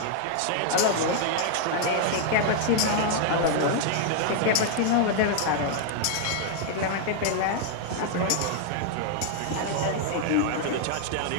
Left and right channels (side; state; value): both; different; correlation 0.00